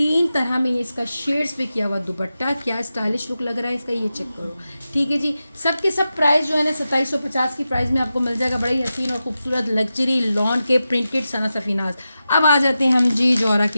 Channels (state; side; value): inverted; both; correlation -0.92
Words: तरह में इसका शेड्स पे किया हुआ दुपट्टा, क्या स्टाइलिश लुक लग रहा है इसका, ये चेक करो, ठीक है जी। सब के सब प्राइस जो है ना 2750 की प्राइस में आपको मिल जाएगा। बड़ा ही हसीन और खूबसूरत लग्जरी लॉन के प्रिंटेड सना सफीनाज। अब आ जाते हैं हम जी जौहरा